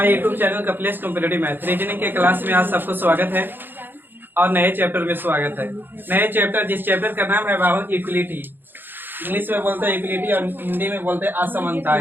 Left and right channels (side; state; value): left; late; 0.096 ms